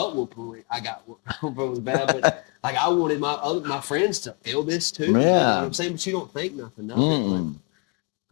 whooping I got was bad, but like I wanted my friends to feel this too. You Yeah. know what I'm saying? But you don't think nothing of it.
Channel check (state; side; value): quieter; right; 33.9 dB